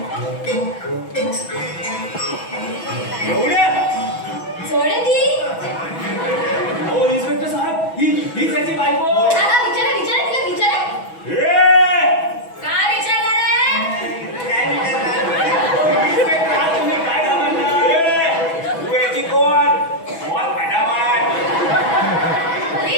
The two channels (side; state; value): right; late; 6.1 ms